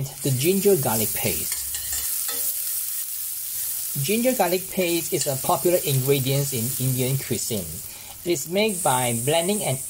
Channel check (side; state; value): both; identical; correlation 1.00